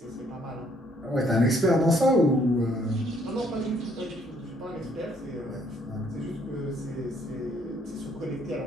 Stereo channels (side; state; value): both; normal; correlation 0.66